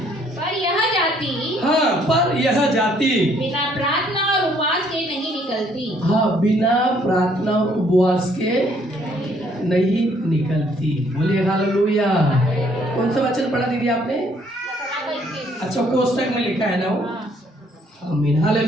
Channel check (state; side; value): normal; both; correlation 0.65